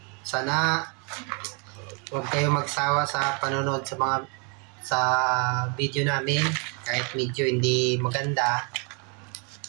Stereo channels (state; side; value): quieter; left; 35.0 dB